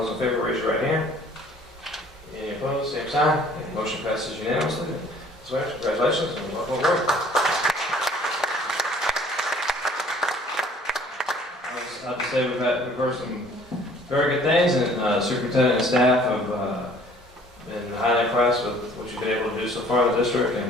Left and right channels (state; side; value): normal; both; correlation 0.55